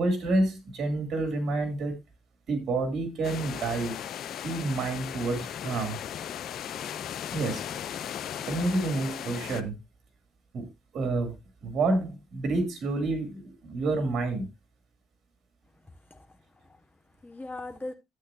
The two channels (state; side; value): normal; both; correlation 0.75